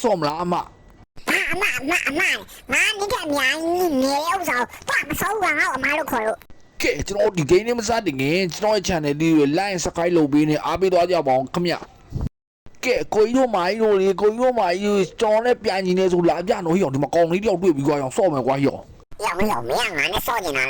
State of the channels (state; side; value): identical; both; correlation 1.00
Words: ဆော့မလားအမ你看娘你有手抓不手啊我妈都可了ကဲကျွန်တော်ဒီဂိမ်းလေးမစတင်ခင်ကျွန်တော်ရဲ့ channel လေးကို like subscribe လုပ်ပေးနေအားပေးသွားကြပါအောင်ခင်ဗျကဲကိုကြီးတို့မာကြီးတို့လေကိုကြီးတို့မာကြီးကျွန်တော်နဲ့ပြန်ညီနေဆိုလာပြနော်ဟိအောင်ဒီမှာကောင်လေးတယောက်တွေ့ပြီးကွာအောင်ဆော့မယ်ကွာဟိအောင်有没有俺那烧进来